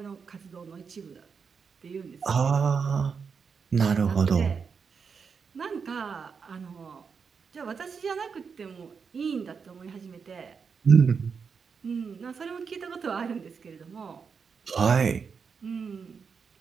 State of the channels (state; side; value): quieter; left; 5.8 dB